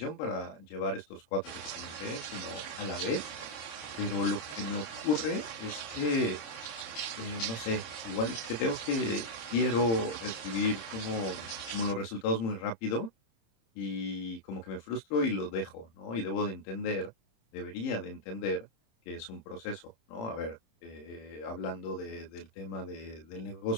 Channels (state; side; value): late; right; 26 ms